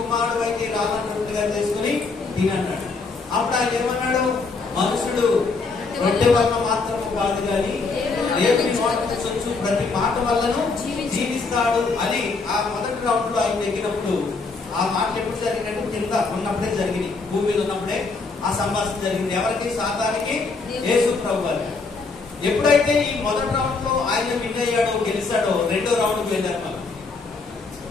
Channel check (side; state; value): right; quieter; 4.2 dB